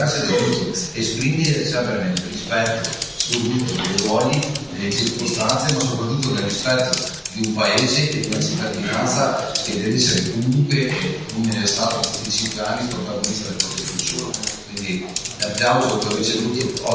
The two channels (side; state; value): both; identical; correlation 1.00